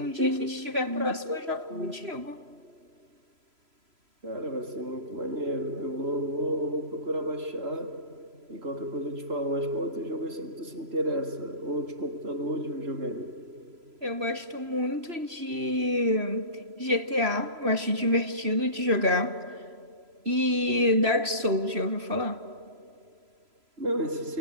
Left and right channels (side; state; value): left; late; 3.0 ms